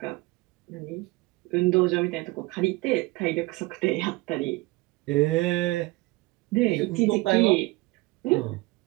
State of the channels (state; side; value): quieter; left; 21.9 dB